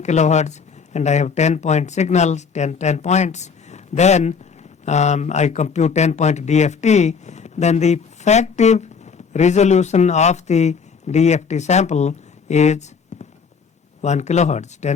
kilohertz and I have 10-point signals, 10 points, then I compute 10-point DFT, then the effective resolution of the DFT sample is 1 kilohertz,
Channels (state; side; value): quieter; right; 5.8 dB